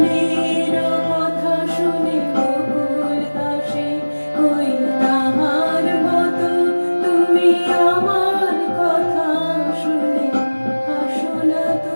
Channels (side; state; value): both; inverted; correlation -1.00